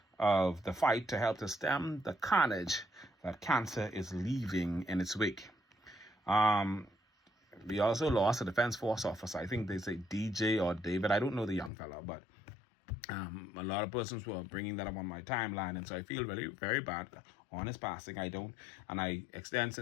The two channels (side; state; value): right; drops out; at 11.7 s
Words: of the fight to help to stem the carnage that cancer is leaving in its wake. We also lost a Defense Force officer. I think they say DJ or David. I don't know the young fella, but a lot of persons were bringing that up on my timeline, and so I feel really very bad on his passing. I extend